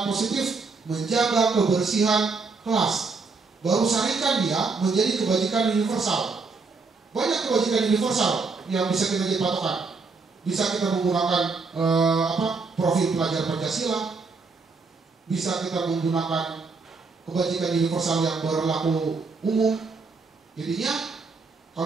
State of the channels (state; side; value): quieter; left; 4.3 dB